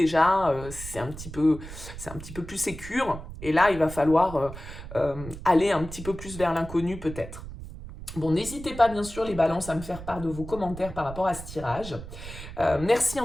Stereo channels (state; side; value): noise; right; rumble, 12 dB below the sound